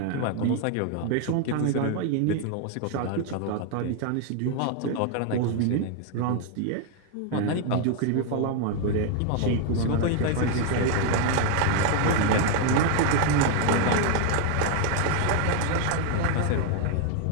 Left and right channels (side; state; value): both; different; correlation 0.00